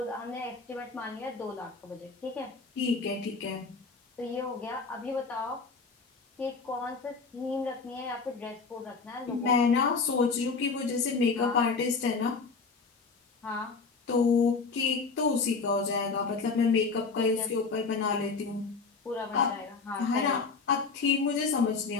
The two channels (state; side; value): quieter; right; 4.6 dB